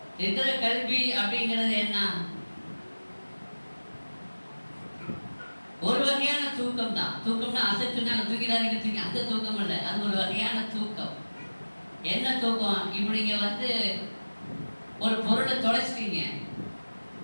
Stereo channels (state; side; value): inverted; both; correlation -1.00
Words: இருக்கிற கல்வி அப்படிங்கிறது என்ன? ஒரு வகையான தூக்கம் தான். தூக்கம்னா அசைச்சுனாங்க தூக்கிடாதீங்க தூக்கி, அந்த தூக்கம் இல்லை, அது ஒரு வகையான தூக்கம். என்ன தூக்கம்? இப்படி நீங்க ஒரு பொருளை தொலைச்சிட்டீங்க,